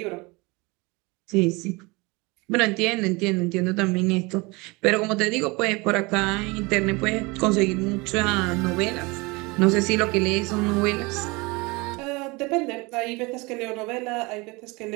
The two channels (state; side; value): quieter; left; 25.6 dB